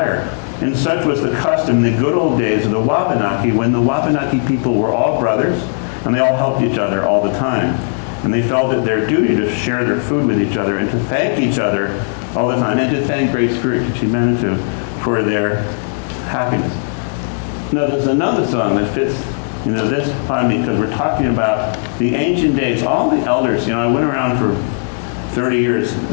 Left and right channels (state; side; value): silent; right; 68 dB below the other